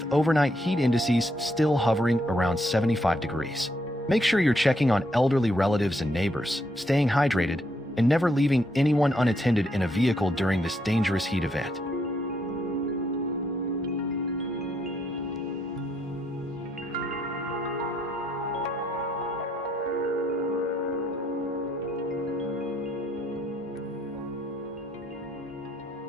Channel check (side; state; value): both; normal; correlation 0.74